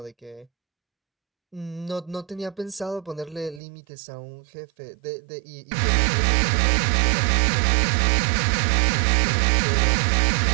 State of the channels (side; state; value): left; drops out; at 3.6 s